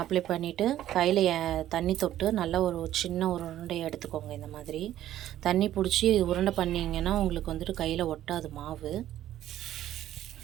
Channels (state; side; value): quieter; left; 12.6 dB